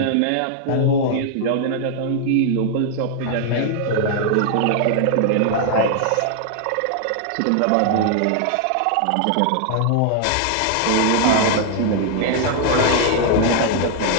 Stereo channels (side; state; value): both; different; correlation 0.00